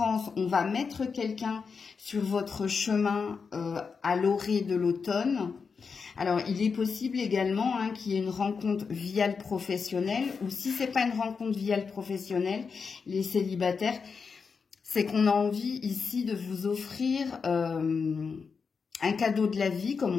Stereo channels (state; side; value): quieter; right; 5.4 dB